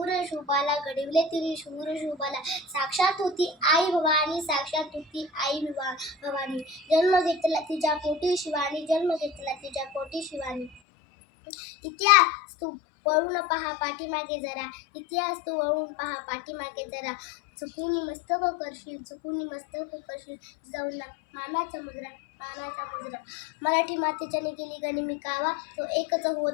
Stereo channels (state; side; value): drops out; right; at 10.8 s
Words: शूबाला, घडविले तिने शूर शूबाला. साक्षात होती आई भवानी, साक्षात होती आई भवानी. जन्म घेतला तिच्या पोटी शिवानी, जन्म घेतला तिच्या पोटी शिवानी. इतिहास तू वळून पहा पाठीमागे जरा, इतिहास तू वळून पहा पाठीमागे जरा. चुकून मस्तक करशील, चुकून मस्तक करशील. जिजाऊंना मानाचा मुजरा. मराठी मातेच्याने केली गनिमी कावा, तो एकच